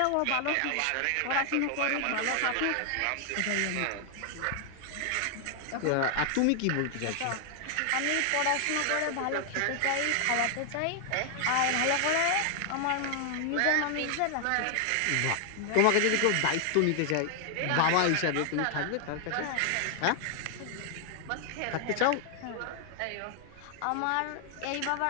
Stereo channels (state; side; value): different; both; correlation 0.00